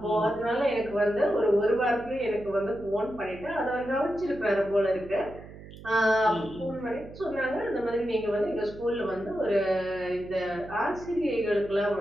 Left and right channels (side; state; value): right; noise; hum, 16 dB below the sound